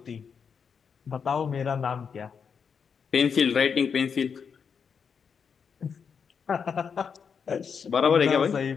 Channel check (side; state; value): right; quieter; 6.4 dB